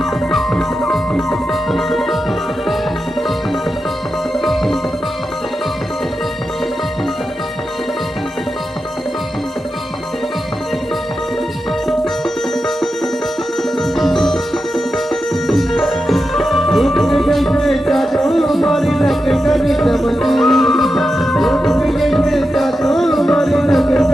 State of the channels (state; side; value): normal; both; correlation 0.89